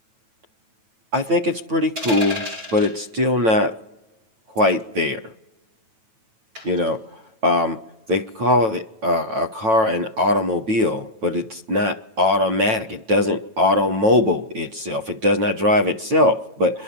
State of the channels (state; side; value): late; left; 9.1 ms